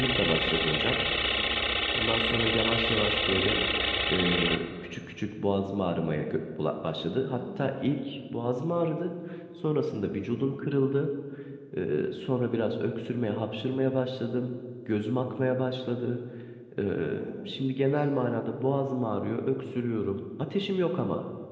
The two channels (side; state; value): both; identical; correlation 1.00